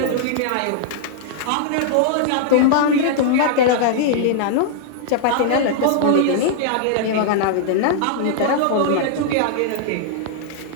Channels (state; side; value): different; both; correlation -0.01